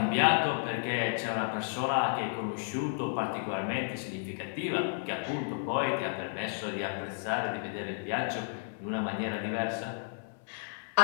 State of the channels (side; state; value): right; silent; 56 dB below the other